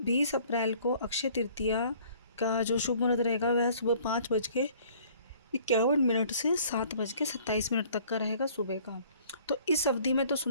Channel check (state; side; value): inverted; both; correlation -0.55